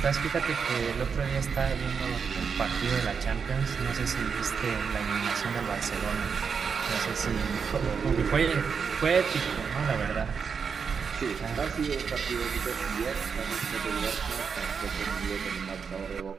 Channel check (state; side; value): quieter; left; 6.1 dB